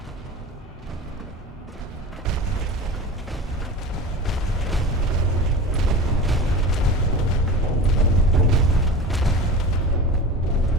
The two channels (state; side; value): normal; both; correlation 0.32